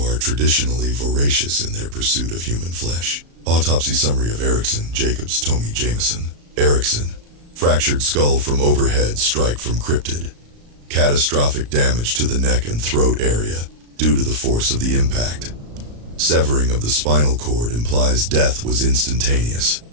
are traditionally voracious in their pursuit of human flesh. Autopsy summary of Erickson, Jacobs, Tommy, Jameson. Erickson, fractured skull from overhead strike from cryptid. Catastrophic damage to the neck and throat area due to the force of the impact. Severing of the spinal cord implies death was instantaneous.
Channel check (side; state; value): left; late; 35 ms